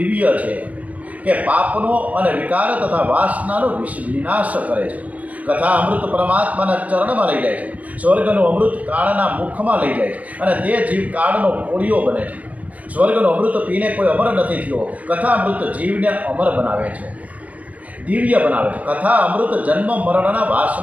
છે કે પાપનો અને વિકાર તથા વાસનાનો વિનાશ કરે છે. કથા અમૃત પરમાત્માના ચરણમાં લઈ જાય છે. સ્વર્ગનું અમૃત કાળના મુખમાં લઈ જાય છે અને તે જીવ કાળનો કોળિયો બને છે. સ્વર્ગનું અમૃત પીને કોઈ અમર નથી થયો. કથા અમૃત જીવને અમર બનાવે છે, દિવ્ય બનાવે છે. કથા અમૃત જન્મ મરણના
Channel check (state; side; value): late; left; 0.070 ms